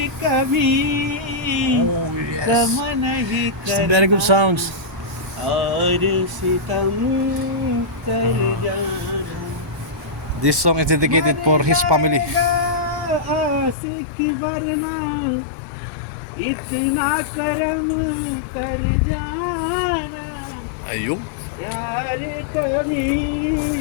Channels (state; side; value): drops out; right; at 13.8 s